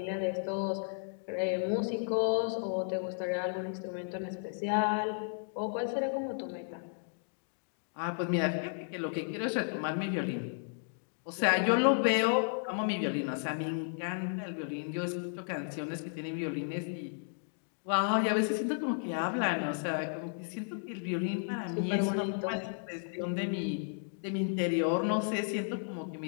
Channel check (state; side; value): silent; right; digital silence